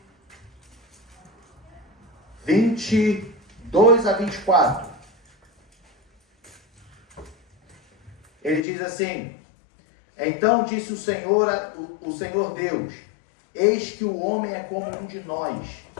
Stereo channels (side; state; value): right; drops out; at 8.6 s